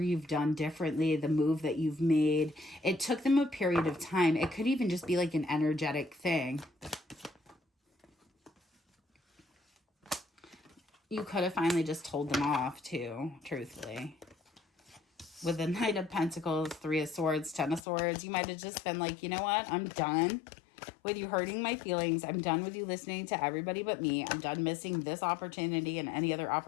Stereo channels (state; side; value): drops out; right; at 17.8 s